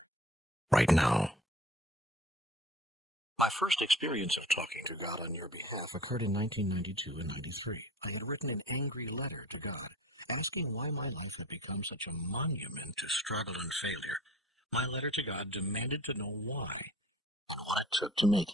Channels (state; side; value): normal; both; correlation 0.44